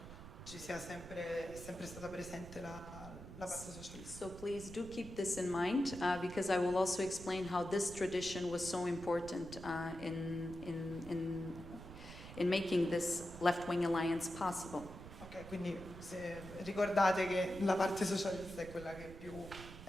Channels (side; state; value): right; noise; rumble, 13 dB below the sound